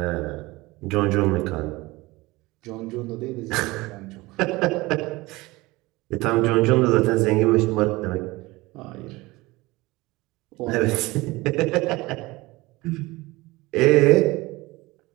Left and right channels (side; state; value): left; quieter; 21.2 dB